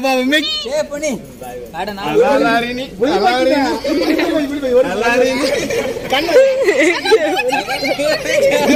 ಬಾಬಾ ಮೆಗ್ ಏ ಪುಣಿ ಅಲಾರಿನಿ ಅಲಾರಿನಿ ಕಣ್ಣ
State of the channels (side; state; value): both; identical; correlation 1.00